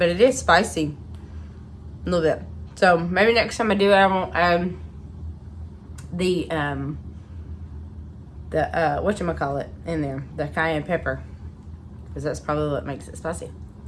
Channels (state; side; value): identical; both; correlation 1.00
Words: it is spicy. A little bit. So, maybe next time I do it, I won't add the whatchamacallit in there. The cayenne pepper. Because that's probably what makes it spicy.